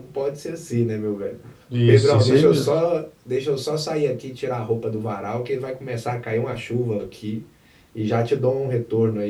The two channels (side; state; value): both; identical; correlation 1.00